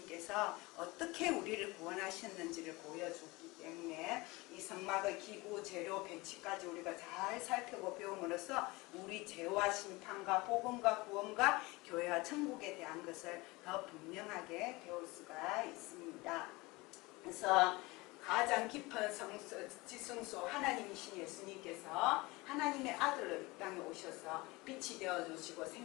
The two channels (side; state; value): right; quieter; 22.9 dB